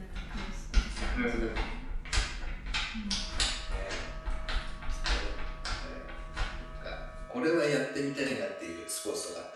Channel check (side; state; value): both; identical; correlation 1.00